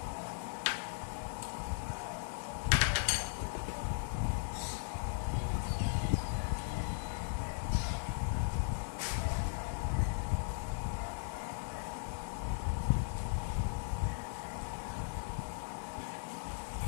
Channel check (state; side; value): silent; right; digital silence